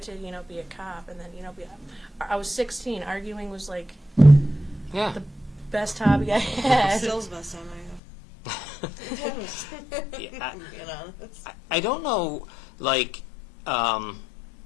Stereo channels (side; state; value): right; drops out; at 8.0 s